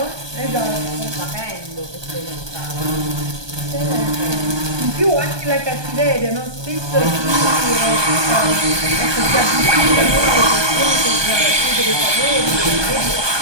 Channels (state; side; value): late; left; 1.2 ms